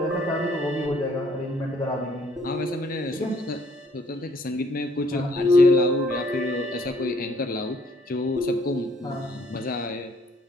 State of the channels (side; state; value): both; normal; correlation 0.64